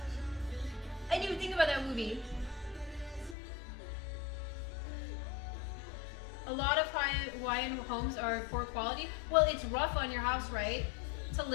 I didn't even think about that movie. A lot of Hawaiian homes are poor quality. Well, it's rough on your house, right? To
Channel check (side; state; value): right; drops out; at 3.4 s